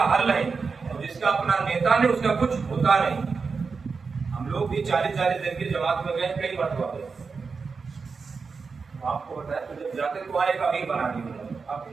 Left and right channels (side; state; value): left; quieter; 4.9 dB